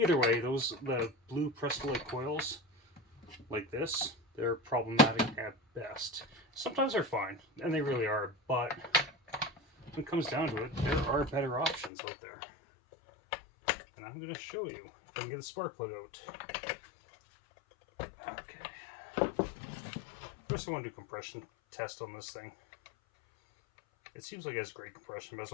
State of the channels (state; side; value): drops out; right; at 11.9 s